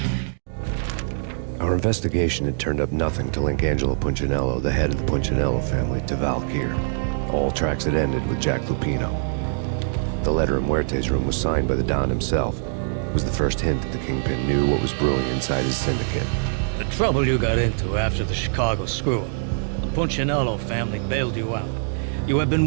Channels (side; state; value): left; silent; digital silence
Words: Our investigation had turned up nothing to link Angelo Punchinello, the head of the Punchinello family, to Valkyr. All tracks had ended with Jack Lupino. The letter in Muerte's room was signed by the Don himself. It was the first hint that the Kingpin knew what was brewing inside his syndicate. The trouble you got into after the Chicago screw-up. The Punchinello family bailed you out. You have been